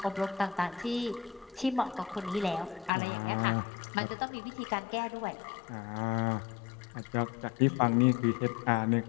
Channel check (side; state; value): right; drops out; at 2.9 s